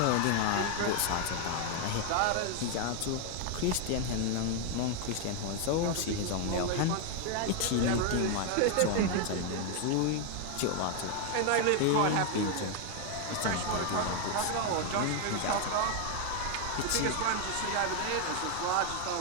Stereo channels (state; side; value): different; both; correlation 0.01